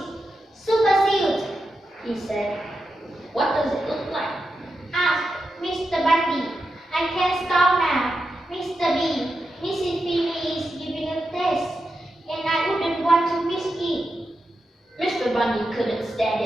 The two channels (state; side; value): normal; both; correlation 0.88